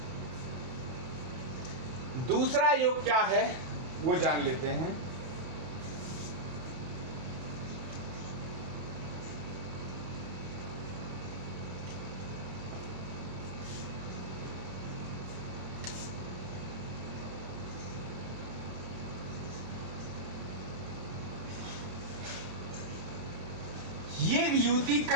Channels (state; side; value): late; left; 32 ms